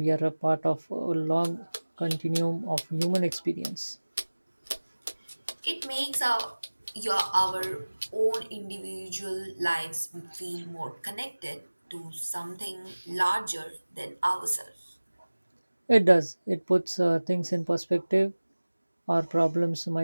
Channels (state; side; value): inverted; both; correlation -1.00